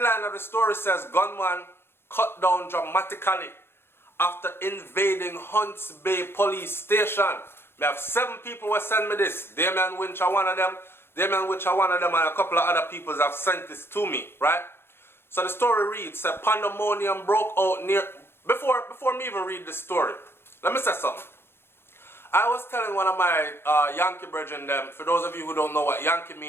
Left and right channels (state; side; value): late; right; 0.11 ms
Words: of the story says, gunman cut down dramatically after invading Hunts Bay police station. We have 7 people who sent me this. Damien Winch are one of them. And a couple of other people have sent this to me, right? So the story reads, pandemonium broke out near... Before me even read the story, let me say something. I was telling one of my Yankee brethren them, for those of you who don't know what Yankee